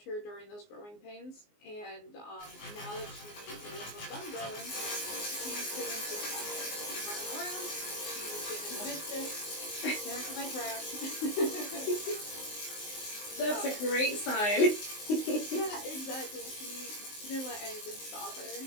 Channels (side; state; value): right; late; 19 ms